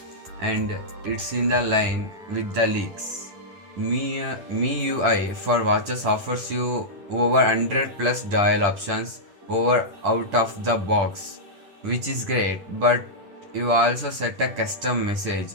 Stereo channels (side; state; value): left; late; 10 ms